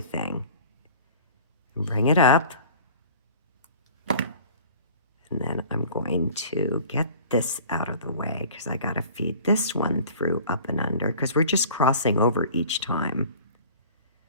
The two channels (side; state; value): both; inverted; correlation -0.45